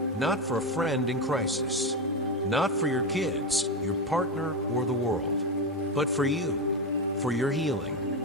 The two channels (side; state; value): both; normal; correlation 0.13